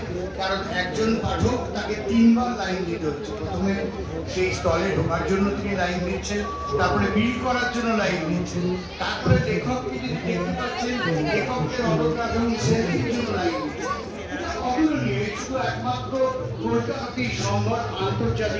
কারণ একজন পাঠক তাকে 3 বার লাইন দিতে হচ্ছে। প্রথমে সেই স্টলে ঢোকার জন্য তিনি লাইন দিচ্ছেন, তারপরে বিল করার জন্য লাইন দিচ্ছেন, তারপরে লেখককে যদি দেখতে পাচ্ছেন লেখকের অটোগ্রাফ এবং সেলফির জন্য লাইন দিচ্ছেন। অতুলনীয়, শুধু একমাত্র কলকাতাতেই সম্ভব,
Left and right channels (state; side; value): identical; both; correlation 1.00